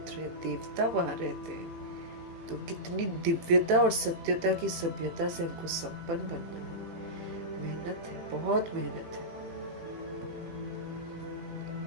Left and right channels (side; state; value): left; late; 18 ms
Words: है, देवता वहां रहते हैं, तो कितनी दिव्यता और सत्यता की सभ्यता से हमको संपन्न बनना है। मेहनत है, बहुत मेहनत है।